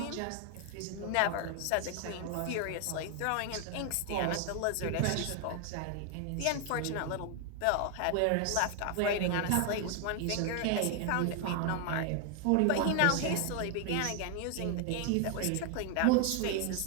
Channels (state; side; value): different; both; correlation 0.00